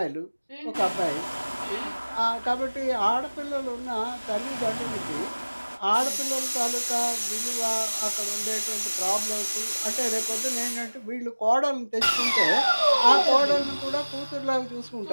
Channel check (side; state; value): both; inverted; correlation -1.00